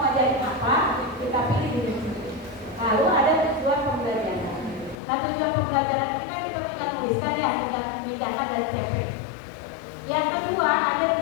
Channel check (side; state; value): right; drops out; at 5.0 s